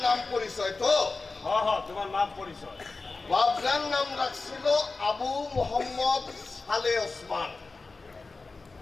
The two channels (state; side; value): quieter; right; 3.8 dB